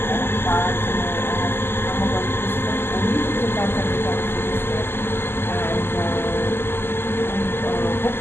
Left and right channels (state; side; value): late; right; 0.11 ms